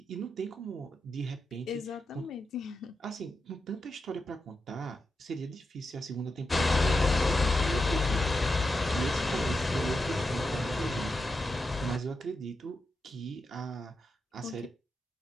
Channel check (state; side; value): normal; both; correlation 0.87